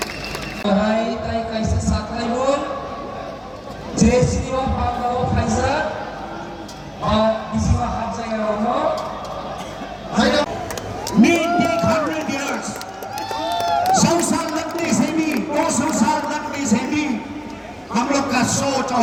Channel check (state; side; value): identical; both; correlation 1.00